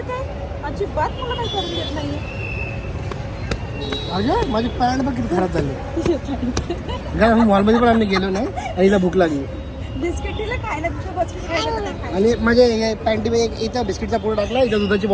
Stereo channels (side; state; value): both; identical; correlation 1.00